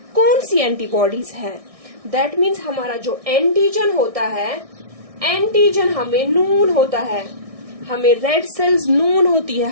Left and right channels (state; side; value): late; left; 1.6 ms